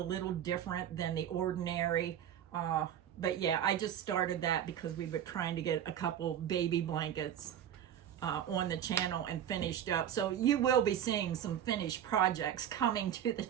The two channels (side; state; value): left; quieter; 10.0 dB